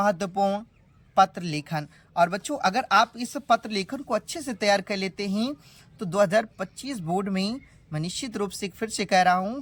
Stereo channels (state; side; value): identical; both; correlation 1.00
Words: पत्र लेखन। और बच्चों अगर आप इस पत्र लेखन को अच्छे से तैयार कर लेते हैं तो 2025 बोर्ड में मैं निश्चित रूप से फिर से कह रहा